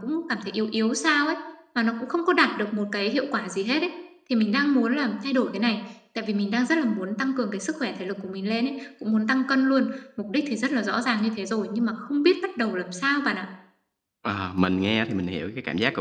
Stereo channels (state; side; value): identical; both; correlation 1.00